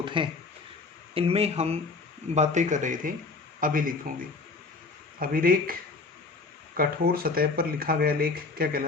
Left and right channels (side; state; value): right; quieter; 3.9 dB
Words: हैं इनमें हम बातें कर रहे थे अभिलेखों की। अभिलेख कठोर सतह पर लिखा गया लेख क्या